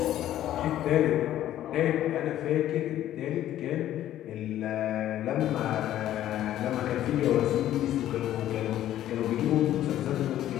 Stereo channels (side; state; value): right; quieter; 12.5 dB